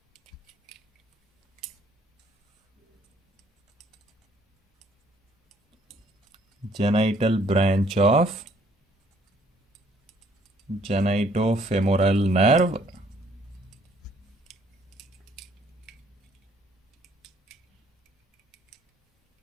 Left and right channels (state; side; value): normal; both; correlation 0.63